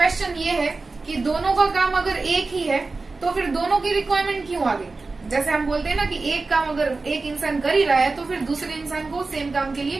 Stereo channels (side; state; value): left; quieter; 3.7 dB